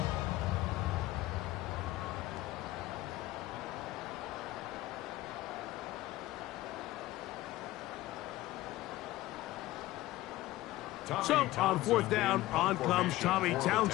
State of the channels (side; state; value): right; quieter; 16.9 dB